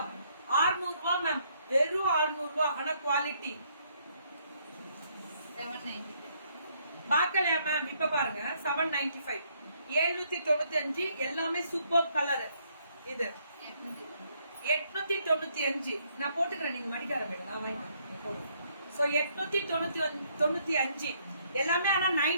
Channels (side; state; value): both; inverted; correlation -0.69